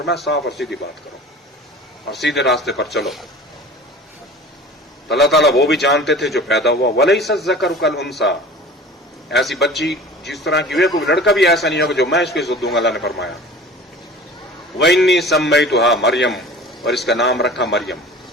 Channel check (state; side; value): normal; both; correlation 0.41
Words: صاف اور سیدھی بات کرو اور سیدھے راستے پر چلو. تو اللہ تعالیٰ وہ بھی جانتے تھے جو پیدا ہوا. وَلَيْسَ الذَّكَرُ كَالْأُنثَىٰ، ایسی بچی جس طرح کی ہوئی، کوئی لڑکا بھی ایسا نہیں ہوگا جو میں اس کو عزت دوں گا. اللہ نے فرمایا وَإِنِّي سَمَّيْتُهَا مریم، اور اس کا نام رکھا مریم.